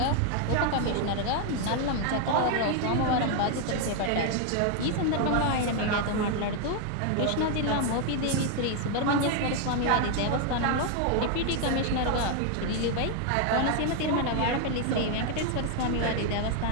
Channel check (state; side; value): different; both; correlation 0.01